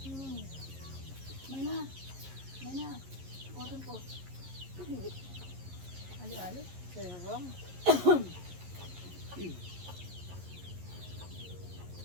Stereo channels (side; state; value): left; late; 11 ms